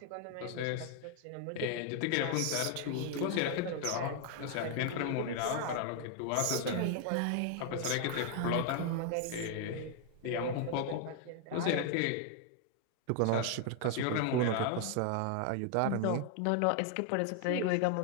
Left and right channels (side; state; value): both; different; correlation 0.00